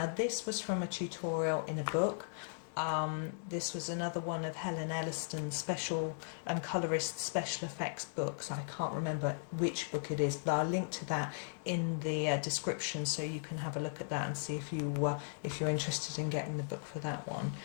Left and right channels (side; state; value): right; silent; digital silence